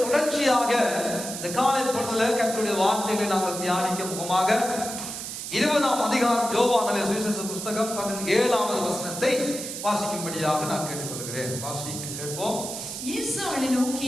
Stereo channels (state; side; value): noise; right; hiss, 7 dB below the sound